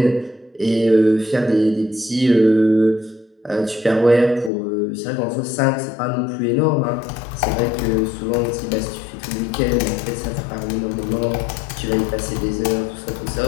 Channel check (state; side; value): drops out; right; at 4.5 s